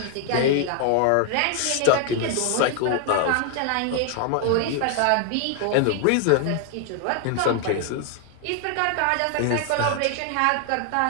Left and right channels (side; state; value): both; different; correlation 0.00